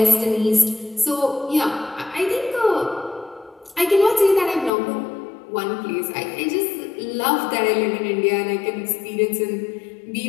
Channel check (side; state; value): right; drops out; at 4.7 s